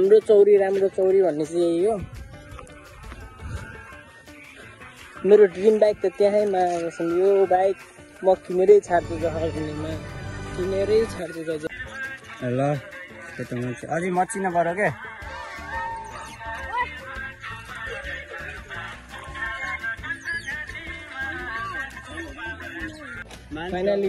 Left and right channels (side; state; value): both; identical; correlation 1.00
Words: चौरी राम्रो चौरी भन्ने चाहिँ यही हो। मेरो ड्रिम बाइक त त्यहीँमा यो बाइक म किनेरै छाड्छु जहाँमा, किनेरै छाड्छु गाइज। ल त्यो त हुन्छ, अझै मचिन पऱ्यो क्या।